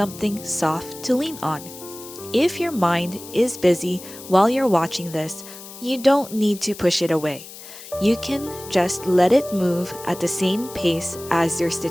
soft to lean on. If your mind is busy while you're watching this, you don't need to push it away. You can just let it move at the same pace as your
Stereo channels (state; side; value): noise; left; hiss, 15 dB below the sound